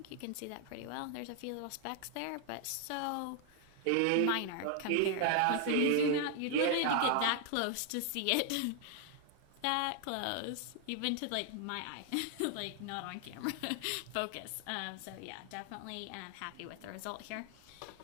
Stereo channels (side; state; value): both; different; correlation 0.00